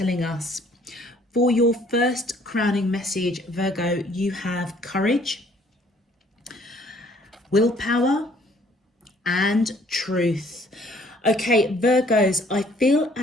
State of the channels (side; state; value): both; normal; correlation 0.60